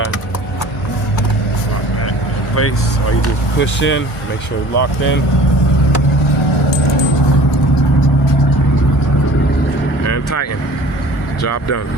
Lock that in place. Or you just push in, make sure it's locked in. And tighten. Job done.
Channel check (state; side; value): normal; both; correlation 0.46